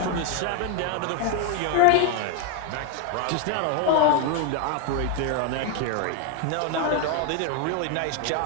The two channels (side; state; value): both; different; correlation 0.01